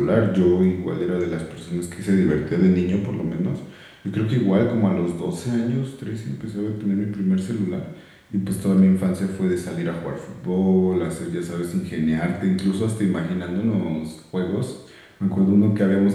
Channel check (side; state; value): both; identical; correlation 1.00